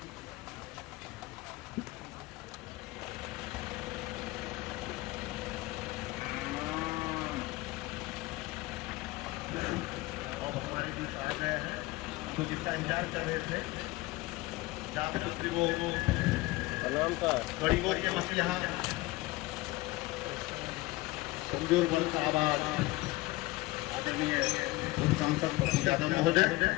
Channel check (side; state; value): right; quieter; 20.4 dB